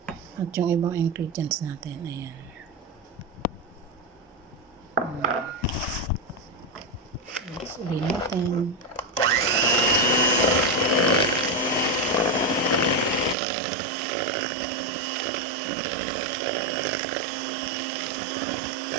at yung ibang ingredients natin. Ayan. Let's ulit natin.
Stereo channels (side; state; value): left; drops out; at 13.4 s